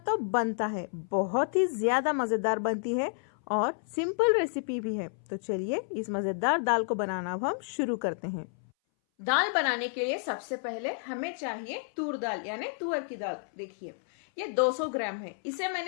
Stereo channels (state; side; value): silent; right; 57 dB below the other